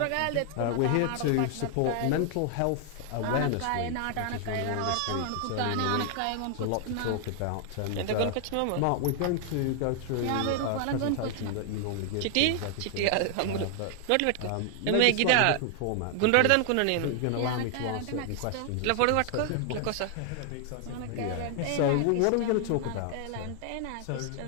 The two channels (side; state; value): both; different; correlation 0.00